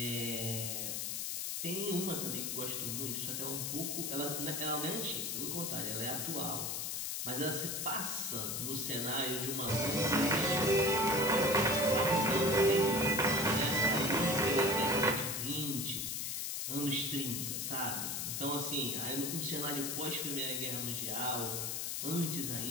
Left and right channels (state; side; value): noise; left; hiss, 2 dB below the sound